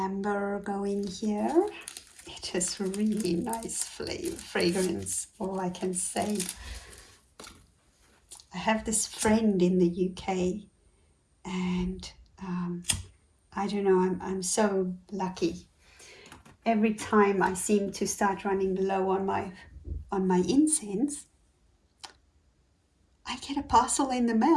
going here. It has really nice fragrance, all I can say. I have this friend in the UK, and I don't know, I'm so lucky. Every time I seem to start running low on my incense, I get a parcel in the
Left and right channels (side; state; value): both; identical; correlation 1.00